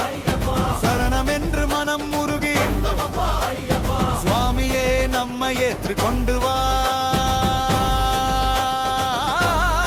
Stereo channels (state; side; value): identical; both; correlation 1.00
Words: சரணம் என்று மனம் முருகி சுவாமியே நம்மை ஏற்று கொண்டு வா.